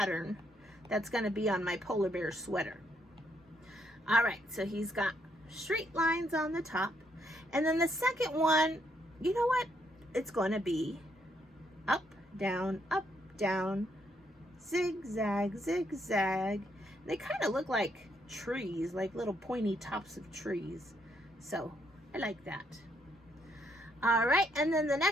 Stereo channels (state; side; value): normal; both; correlation 0.73